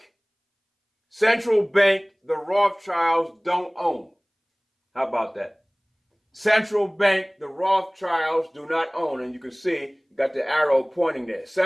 the Rothschilds don't own. How about that? Central bank, the Rothschilds do not own. And you can see, you got the arrow pointing there.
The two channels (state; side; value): identical; both; correlation 1.00